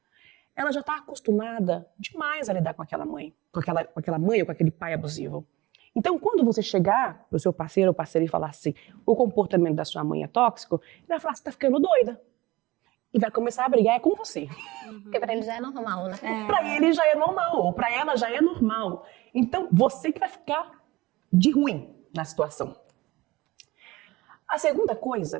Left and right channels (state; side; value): quieter; left; 19.8 dB